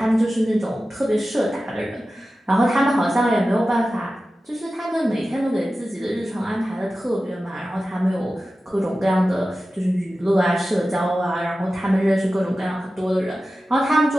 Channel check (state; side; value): normal; both; correlation 0.94